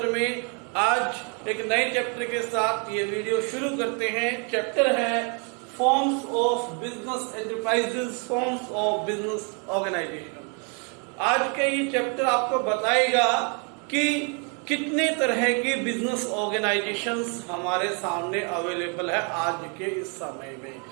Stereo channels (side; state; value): left; quieter; 36.7 dB